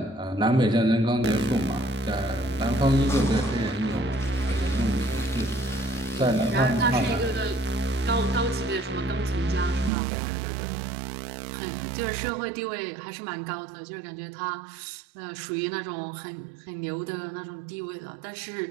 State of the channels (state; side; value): drops out; left; at 9.9 s